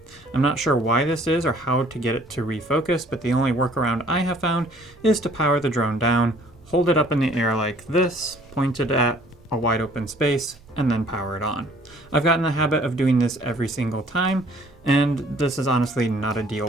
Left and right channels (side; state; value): both; normal; correlation 0.56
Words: I'm not sure why this is or how to get it to refocus, but the only workaround I have found is to power the drone down, hold it up in the air like this, pointed at a wide open space, and then power it on. I've gotten the habit of doing this every single time, and this is honestly not a